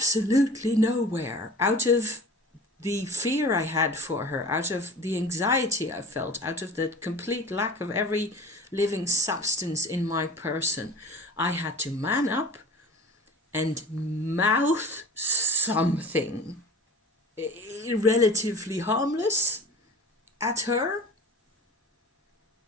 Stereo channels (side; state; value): both; normal; correlation 0.40